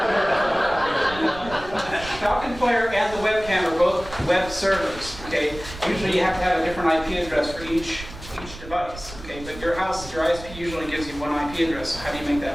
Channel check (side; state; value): right; noise; rumble, 14 dB below the sound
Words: Falcon Player and the webcam are both web servers, okay? Usually you have to have a different IP address for each device, okay? But your house, your ISP usually gives you one IP address, so how do you make